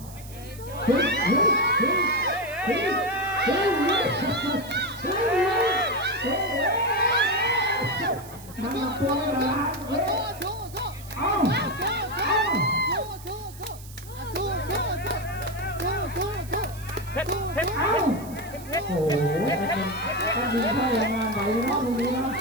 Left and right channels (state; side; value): noise; right; hiss, 18 dB below the sound